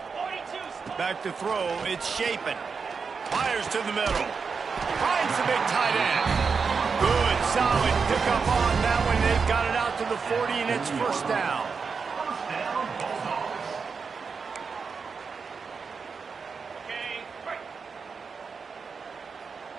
Back to throw. It's Shapen. Fires to the middle. Finds the big tight end. Good, solid pickup on that one. They've got it out to the 40, and it's first down.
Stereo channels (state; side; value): quieter; left; 5.3 dB